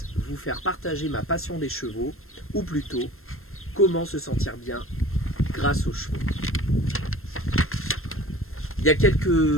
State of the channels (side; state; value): right; late; 0.62 ms